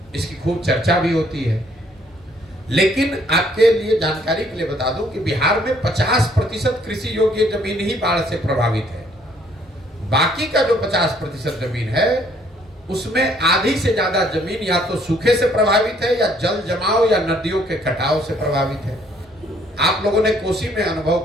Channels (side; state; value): both; normal; correlation 0.64